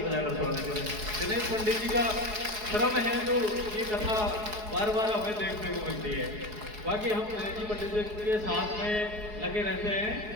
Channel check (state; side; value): late; left; 4.7 ms